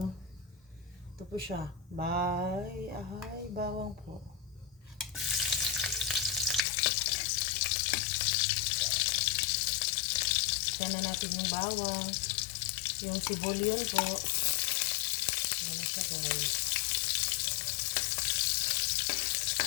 Ito po siya. Bawang po. Isa na natin yung bawang. Yung sibolion po. Ayan na siya guys.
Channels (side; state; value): right; drops out; at 6.6 s